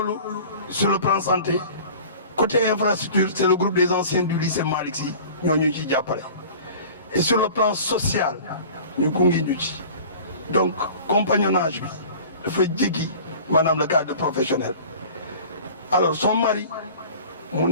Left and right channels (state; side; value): inverted; both; correlation -0.42